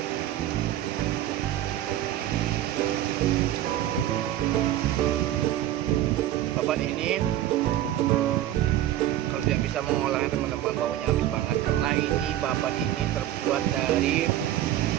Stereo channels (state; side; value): quieter; left; 13.0 dB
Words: babat ini kalau tidak bisa mengolahnya teman-teman, baunya habis banget karena ini babat ini terbuat dari